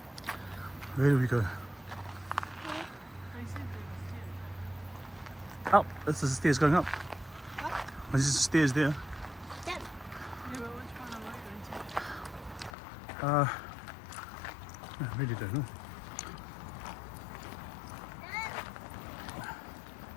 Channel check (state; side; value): drops out; right; at 12.8 s